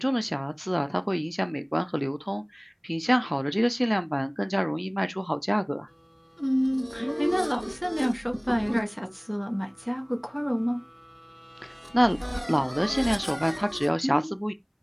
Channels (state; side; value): identical; both; correlation 1.00